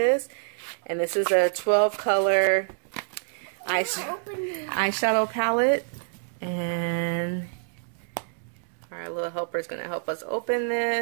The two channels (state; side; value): silent; left; digital silence